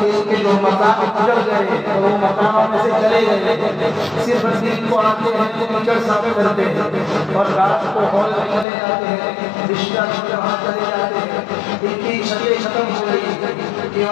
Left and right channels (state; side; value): drops out; right; at 8.7 s